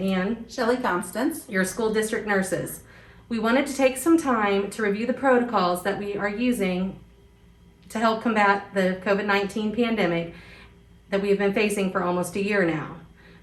Shelly, Constance. your school district nurses. We wanted to take some time to review the protocols that we are using to help combat the COVID-19 pandemic that we have been facing for almost a year now.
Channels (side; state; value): both; identical; correlation 1.00